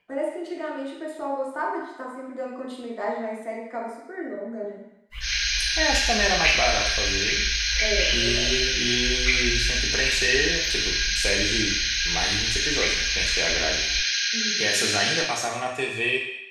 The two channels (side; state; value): both; identical; correlation 1.00